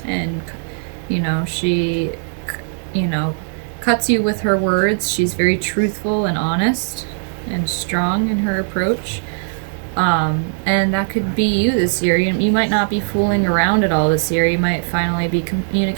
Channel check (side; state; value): left; silent; digital silence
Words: and, she, cuts you with her words. She's very truthful and honest and strong in her approach. And that could be you this year. You might not be fooling around at all this year. You might finally be